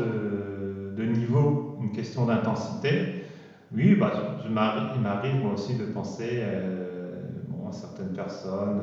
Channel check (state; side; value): identical; both; correlation 1.00